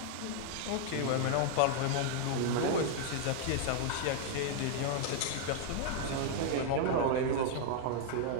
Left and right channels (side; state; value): both; different; correlation 0.00